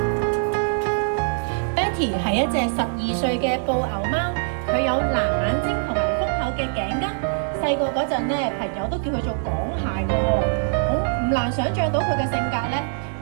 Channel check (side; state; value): left; silent; digital silence